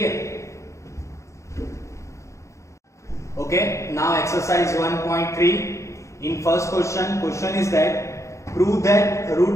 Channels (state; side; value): late; right; 0.15 ms